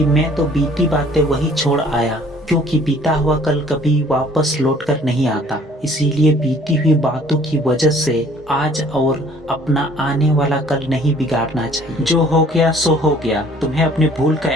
मैं तो बीती बातें वही छोड़ आया, क्योंकि बीता हुआ कल कभी वापस लौटकर नहीं आता। इसीलिए बीती हुई बातों की वजह से आज और अपना आने वाला कल नहीं बिगाड़ना चाहिए। जो हो गया सो हो गया। तुम्हें अपनी भूल का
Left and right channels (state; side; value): normal; both; correlation 0.56